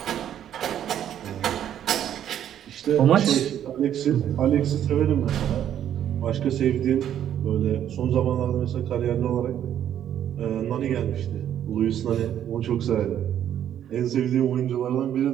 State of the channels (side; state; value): left; quieter; 10.3 dB